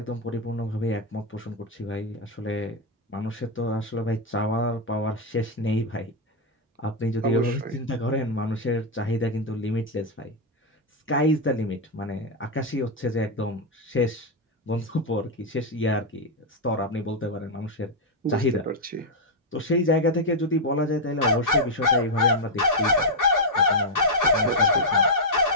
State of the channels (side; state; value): both; normal; correlation -0.01